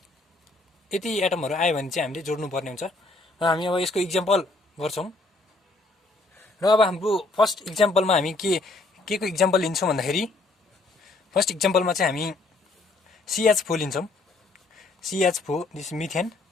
यति एटमहरू आयो भने चाहिँ हामीले जोड्नु पर्ने हुन्छ। र हामी अब यसको इक्जाम्पल गर्छौँ। र अब हाम्रो फर्स्ट इक्जाम्पलमा हामी के को इक्जाम्पल लिन्छौँ भन्दाखेरि फर्स्ट इक्जाम्पलमा चाहिँ हामी CH4 लिन्छौँ। CH4 this methane.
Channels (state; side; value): quieter; right; 3.2 dB